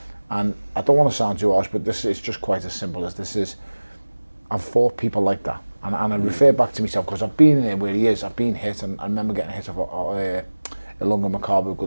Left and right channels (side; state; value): both; inverted; correlation -1.00